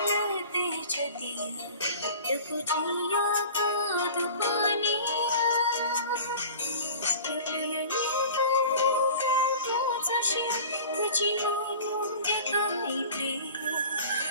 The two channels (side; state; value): both; inverted; correlation -0.41